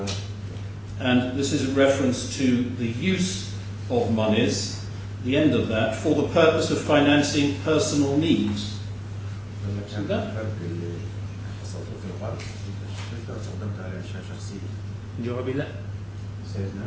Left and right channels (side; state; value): both; identical; correlation 1.00